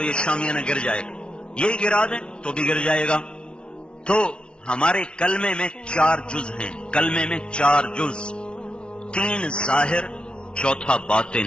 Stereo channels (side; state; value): right; late; 0.057 ms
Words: یہ شامیانہ گر جائے گا، یہ گرا دیں تو بھی گر جائے گا۔ تو ہمارے کلمے میں 4 جز ہیں، کلمے میں 4 جز، 3 ظاہر، چوتھا